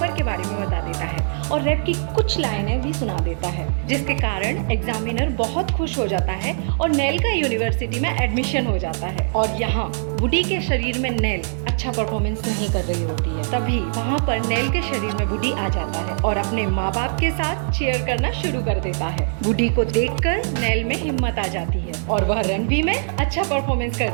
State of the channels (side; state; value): left; silent; digital silence